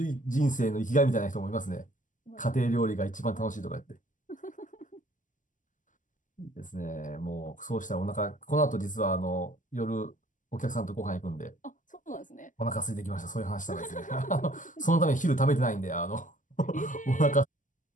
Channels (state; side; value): late; right; 0.37 ms